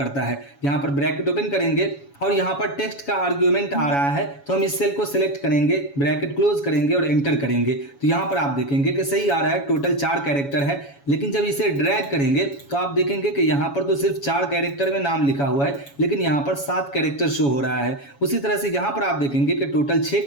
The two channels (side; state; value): right; late; 7.2 ms